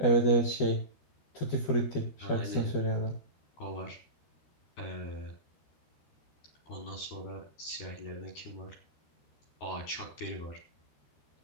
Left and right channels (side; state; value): right; late; 13 ms